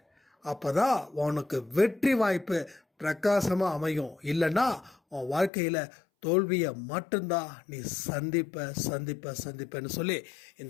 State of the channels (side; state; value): right; drops out; at 5.5 s